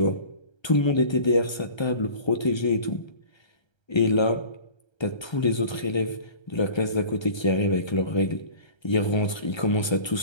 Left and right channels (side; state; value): right; late; 1.3 ms